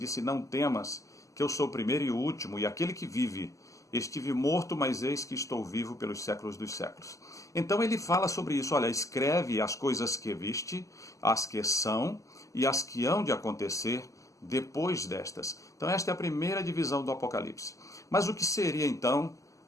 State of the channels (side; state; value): right; late; 0.16 ms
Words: Não temas, que eu sou o primeiro e o último, e aquele que vive. Estive morto, mas eis que estou vivo pelos séculos dos séculos. Então ele fala sobre isso. Olha, escreve as coisas que viste, as que são e as que hão de acontecer depois destas. Então esta é a primeira divisão do Apocalipse. Mas o que seria então